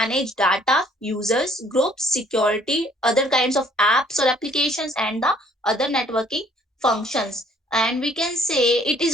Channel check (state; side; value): normal; both; correlation 0.60